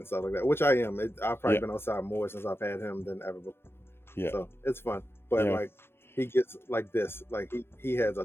stuff like that, which I am. I've probably been outside more since I've had him than ever before. Yeah, so it's fun. But like he gets like this, like he has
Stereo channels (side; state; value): right; late; 0.11 ms